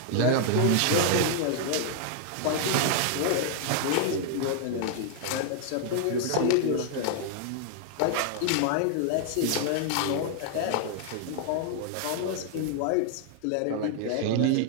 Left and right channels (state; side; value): different; both; correlation 0.00